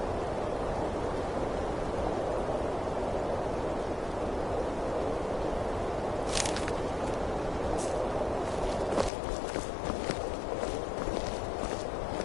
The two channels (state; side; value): drops out; right; at 9.1 s